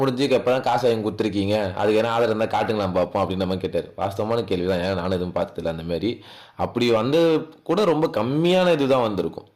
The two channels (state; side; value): identical; both; correlation 1.00